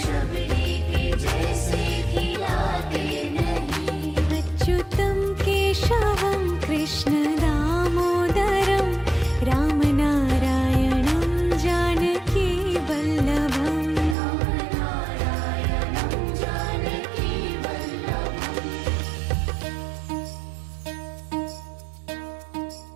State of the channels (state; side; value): drops out; left; at 14.2 s